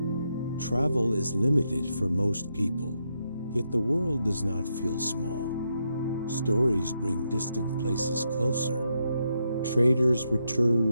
Travel is limited for most people, yet the world does not feel small. Stories bring distant places closer. Traders return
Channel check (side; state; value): both; inverted; correlation -0.81